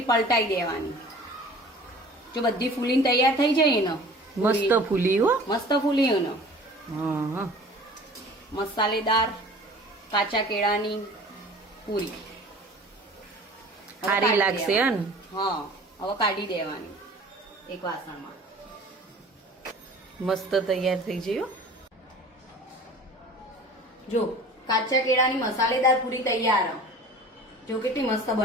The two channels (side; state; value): both; normal; correlation 0.44